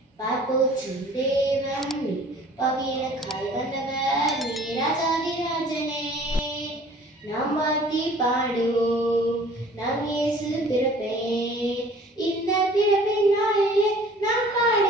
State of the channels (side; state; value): both; normal; correlation 0.50